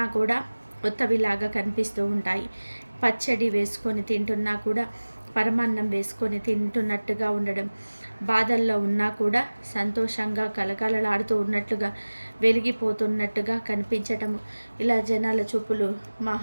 కూడా కొత్తవిలాగా కనిపిస్తూ ఉంటాయి. పచ్చడి వేసుకొని తింటున్నా కూడా పరమాన్నం వేసుకొని తింటున్నట్టుగా ఉండడం, బాధల్లో ఉన్నా కూడా సంతోషంగా కలకలలాడుతూ ఉన్నట్లుగా, వెలిగిపోతున్నట్టుగా కనిపించటము, ఇలా జనాల చూపులు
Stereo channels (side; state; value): both; inverted; correlation -1.00